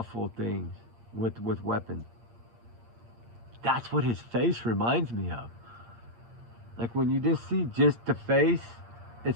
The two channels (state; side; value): late; left; 8.6 ms